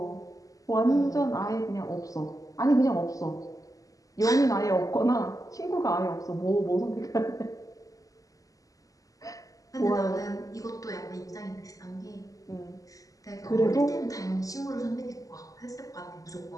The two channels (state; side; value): late; right; 0.17 ms